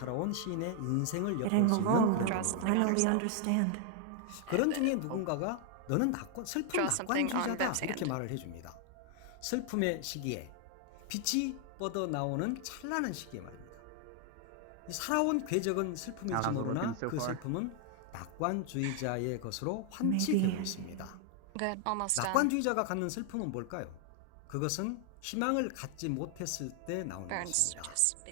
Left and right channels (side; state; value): both; different; correlation 0.00